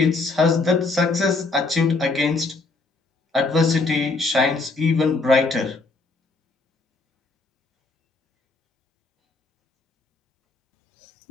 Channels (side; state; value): right; quieter; 3.6 dB